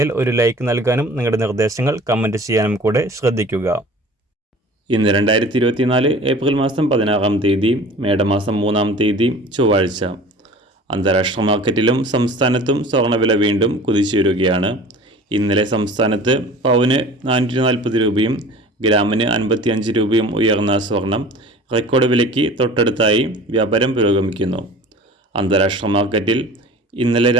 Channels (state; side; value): normal; both; correlation 0.42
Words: ഒരു ലൈക്ക് നൽകാനും നിങ്ങളുടെ നിർദ്ദേശങ്ങൾ കമൻറ്റ് ചെയ്യാനും കൂടെ ശ്രദ്ധിക്കുക. ഇന്ന് 2024 ഏപ്രിൽ മാസം 16-ാം തീയതി, മേടമാസം 3-ാം തീയതി ചൊവ്വാഴ്ച. അന്താരാഷ്ട്ര മാർക്കറ്റിലും സംസ്ഥാനത്തും സ്വർണ്ണവില വീണ്ടും കുതിച്ചുയരുകയാണ്. ഇന്നലെ സംസ്ഥാനത്ത് പവന് 440 രൂപയും ഗ്രാമിന് 55 രൂപയും ഉയർന്ന സ്വർണം റെക്കോർഡ് വിലയ്ക്ക് തൊട്ടടുത്തായി വ്യാപാരം പുരോഗമിക്കുന്നു. അന്താരാഷ്ട്ര മാർക്കറ്റിൽ ഇന്നലെ